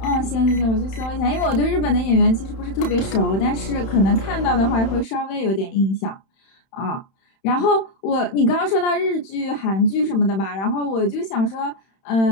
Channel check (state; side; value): late; right; 31 ms